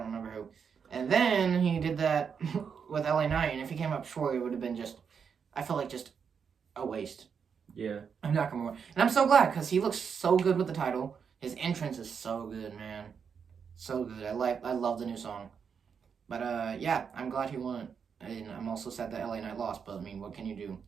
remember who. And then he did that with LA Knight, and if he came up short, it would have been just... I feel like just a waste. Yeah. I'm Nakamura. And I'm so glad, because he looks so good with the title. His entrance is so good, man. So good. I love the new song. But, yeah, I'm glad he won it. And I'm also sad that LA Knight lost, but, I mean, what can you do?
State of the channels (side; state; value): left; quieter; 6.6 dB